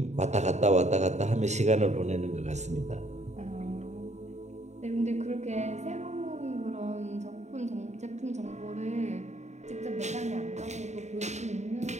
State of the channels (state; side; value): late; left; 0.33 ms